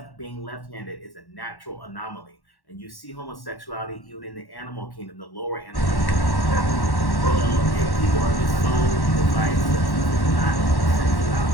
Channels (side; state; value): right; late; 1.1 ms